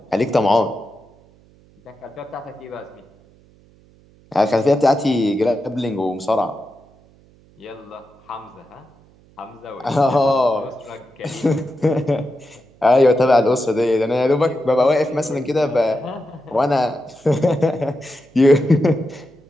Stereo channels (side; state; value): right; noise; hum, 29 dB below the sound